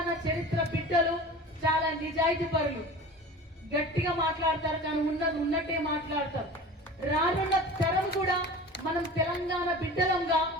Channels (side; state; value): both; normal; correlation 0.37